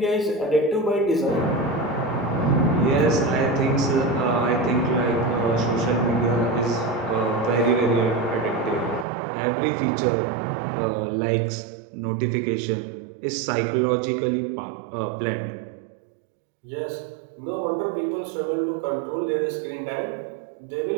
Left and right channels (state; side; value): drops out; left; at 9.1 s